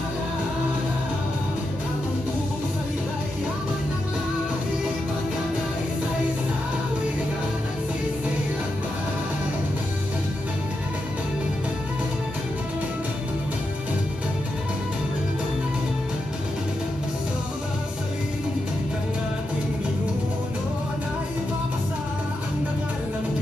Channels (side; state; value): both; normal; correlation 0.86